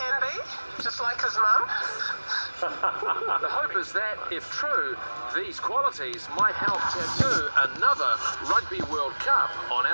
be, just like his mum. The hope is that, if true, these qualities might help tattoo another Rugby World Cup on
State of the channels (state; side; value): inverted; both; correlation -1.00